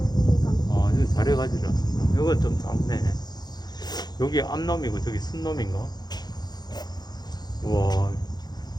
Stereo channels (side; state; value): right; late; 0.20 ms